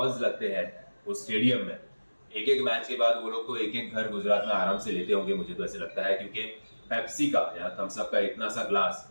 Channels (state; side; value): inverted; both; correlation -1.00